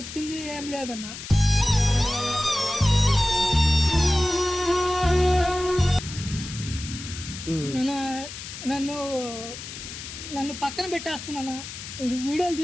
ఏం లేదన్న. నన్ను పక్కన పెట్టేస్తున్నాను. వీడియోలు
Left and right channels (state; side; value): noise; left; hiss, 11 dB below the sound